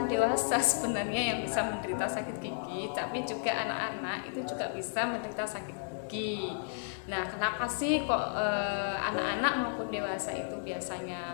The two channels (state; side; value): silent; right; 56 dB below the other